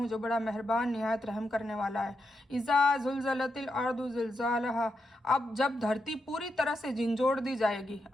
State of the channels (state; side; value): normal; both; correlation 0.85